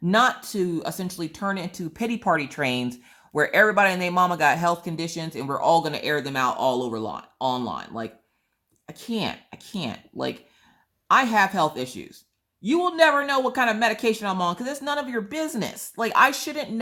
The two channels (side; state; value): both; identical; correlation 1.00